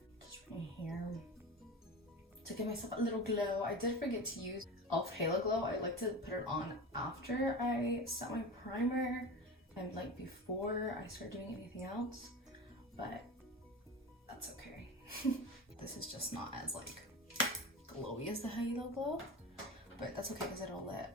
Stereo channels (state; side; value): normal; both; correlation 0.28